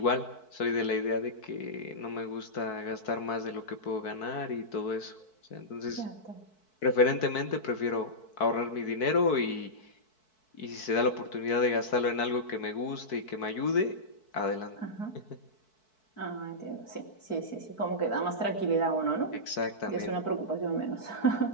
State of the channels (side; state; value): right; late; 4.6 ms